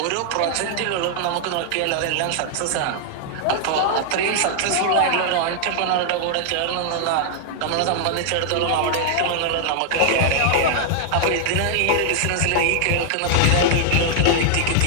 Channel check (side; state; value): both; different; correlation -0.01